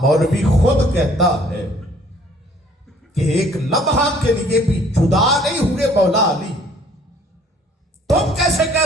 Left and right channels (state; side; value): normal; both; correlation 0.58